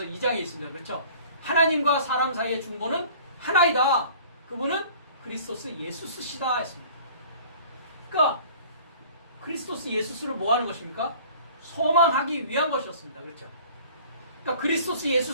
2장에 있습니다. 그렇죠? 하나님과 사람 사이의 중보는 하나이다. 그분은 그리스도스 예수스시다 했습니다. 그러니까 그리스도스 예수스를 뭐 하는 것입니까? 소망하기 위한 것이었습니다. 그렇죠? 그러니까 그리스도스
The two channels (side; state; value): both; inverted; correlation -0.48